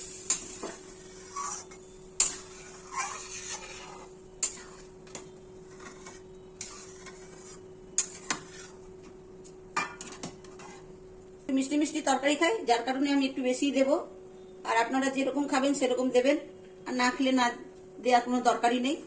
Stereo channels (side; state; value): both; identical; correlation 1.00